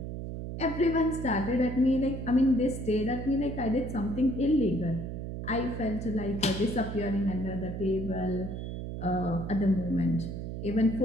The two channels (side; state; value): right; noise; hum, 6 dB below the sound